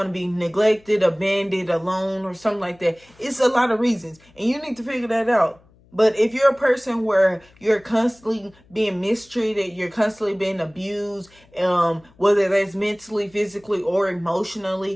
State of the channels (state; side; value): noise; left; hum, 30 dB below the sound